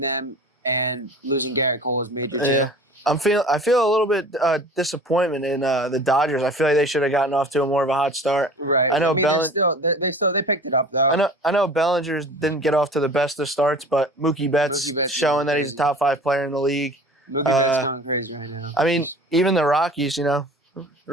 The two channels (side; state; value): both; normal; correlation 0.42